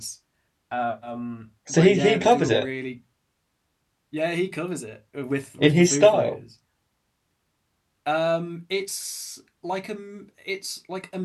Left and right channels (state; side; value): identical; both; correlation 1.00